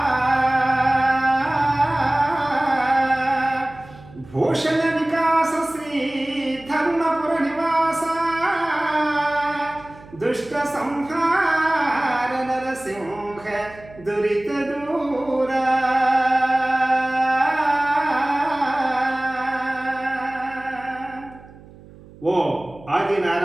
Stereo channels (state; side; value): noise; right; hum, 21 dB below the sound